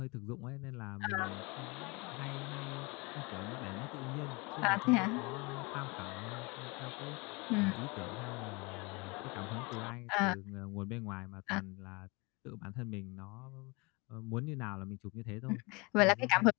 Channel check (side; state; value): right; quieter; 27.2 dB